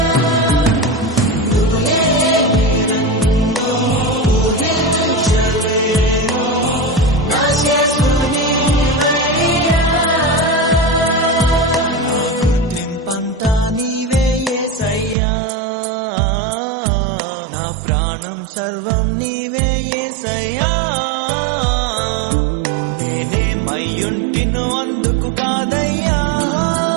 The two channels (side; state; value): left; drops out; at 15.2 s